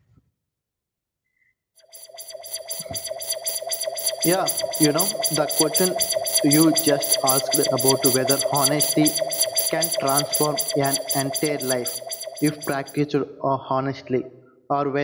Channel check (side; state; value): both; identical; correlation 1.00